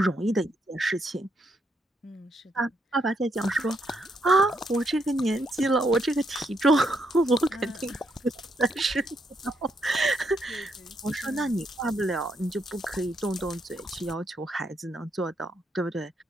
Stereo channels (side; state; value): both; normal; correlation 0.77